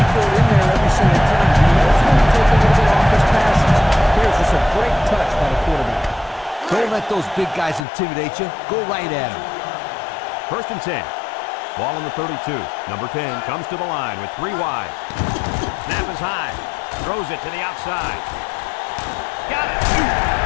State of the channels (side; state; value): right; drops out; at 7.9 s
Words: in there every single time. He knows when to take a little bit off his passes. Here's just a great touch by the quarterback. Don't let let those big guys intimidate you. Go right at them. 1st and 10. Ball on the 32. Number 10 comes to the line with 3 wide. Snap is high. Throws it to the outside. Got it.